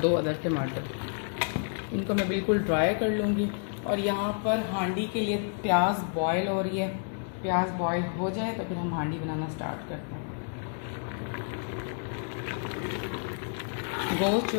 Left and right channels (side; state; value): right; silent; 55 dB below the other